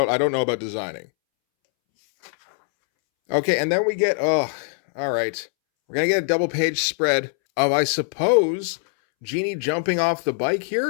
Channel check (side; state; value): right; silent; 64 dB below the other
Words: know about designing. Okay, and then we get, all right. We're going to get a double-page spread of, I suppose, Jeannie jumping off the bike